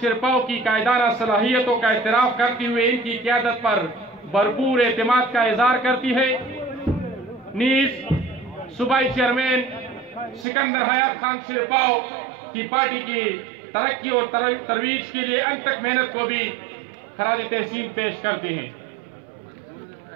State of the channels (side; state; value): left; drops out; at 10.5 s